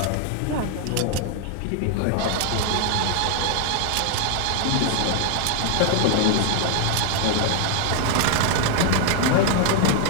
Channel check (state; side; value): different; both; correlation 0.00